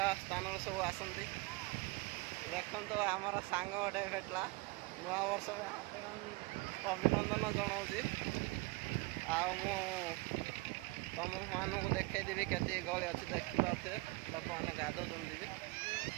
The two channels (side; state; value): left; quieter; 24.4 dB